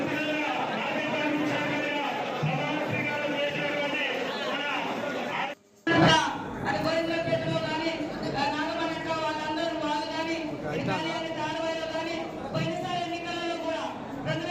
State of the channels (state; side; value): identical; both; correlation 1.00